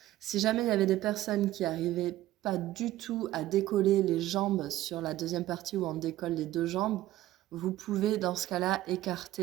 Si jamais il y avait des personnes qui n'arrivaient pas du tout à décoller les jambes sur la deuxième partie où on décolle les deux jambes, vous pouvez dans ce cas-là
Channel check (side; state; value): left; quieter; 15.1 dB